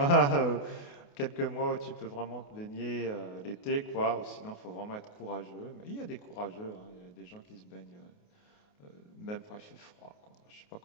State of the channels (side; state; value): right; late; 28 ms